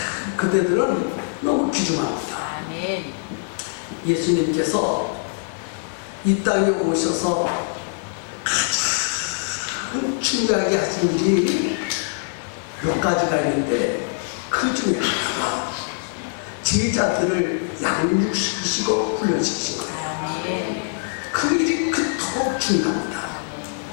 그대들은 너무 귀중합니다. 예수님께서 이 땅에 오셔서 가장 중요하게 하신 일이 몇 가지가 있는데 그 중에 하나가 제자들을 양육시키시고 훈련시키신 거예요. 그 일이 그토록 중요합니다.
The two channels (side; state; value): right; silent; digital silence